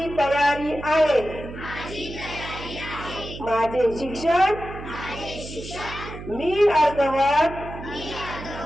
तयारी आहे. माझे शिक्षण मी अर्धवट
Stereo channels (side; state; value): right; noise; hum, 11 dB below the sound